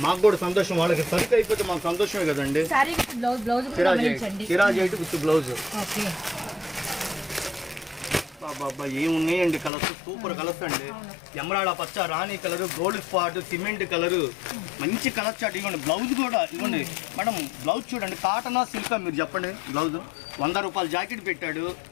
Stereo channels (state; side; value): drops out; right; at 9.7 s